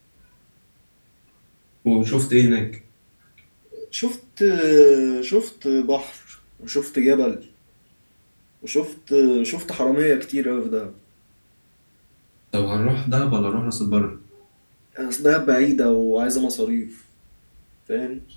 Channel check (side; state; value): both; inverted; correlation -1.00